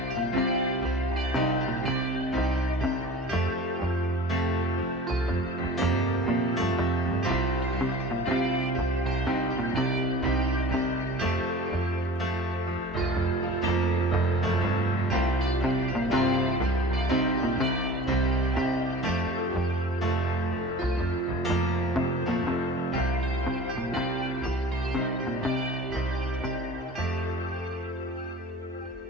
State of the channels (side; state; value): both; normal; correlation 0.39